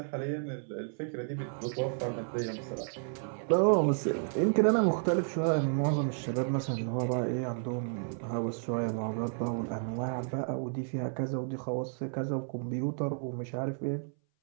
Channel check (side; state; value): left; silent; 56 dB below the other